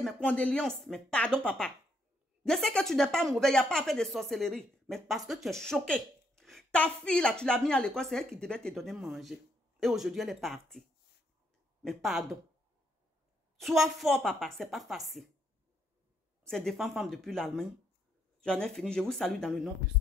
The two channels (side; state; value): both; normal; correlation 0.73